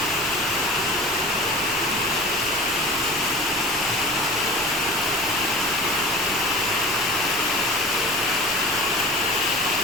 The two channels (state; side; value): normal; both; correlation 0.37